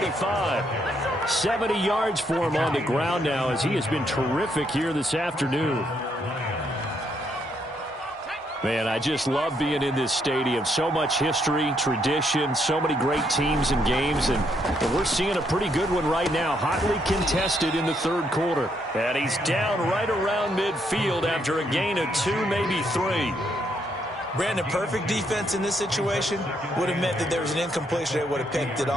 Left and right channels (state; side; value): normal; both; correlation 0.74